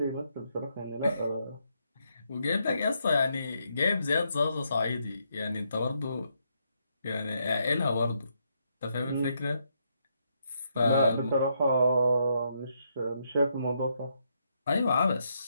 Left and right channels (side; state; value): both; inverted; correlation -0.77